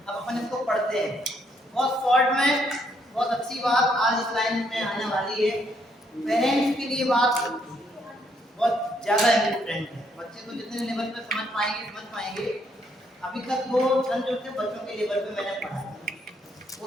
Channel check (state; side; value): normal; both; correlation 0.72